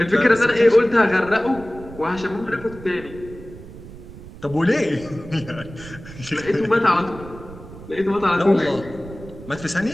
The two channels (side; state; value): right; noise; rumble, 16 dB below the sound